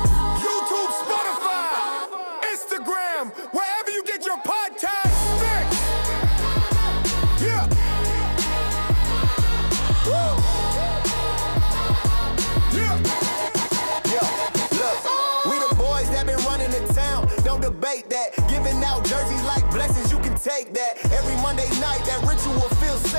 YouTube, Spotify, Instagram, wherever you get your podcast fix. Yeah. Woo. Yo, look, we the boys that been running the town. Don't debate that. Giving out jerseys like blessings, you can take that. Every Monday night, that ritual feels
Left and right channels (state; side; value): inverted; both; correlation -1.00